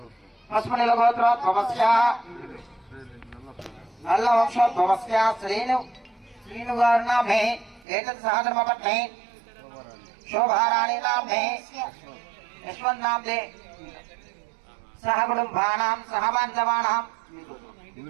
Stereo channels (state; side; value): drops out; left; at 7.9 s